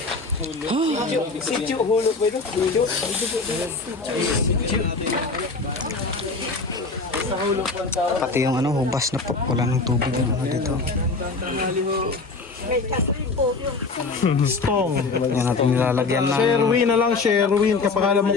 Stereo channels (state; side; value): quieter; right; 4.0 dB